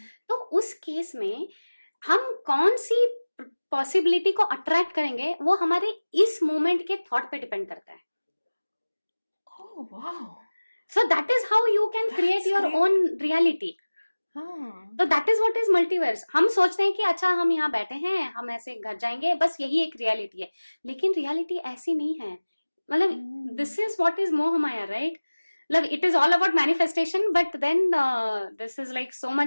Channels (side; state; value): both; inverted; correlation -1.00